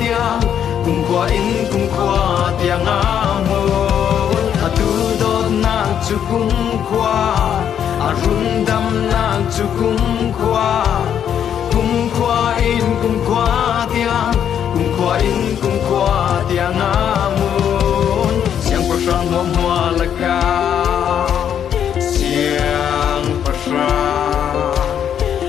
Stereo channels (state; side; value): quieter; right; 9.0 dB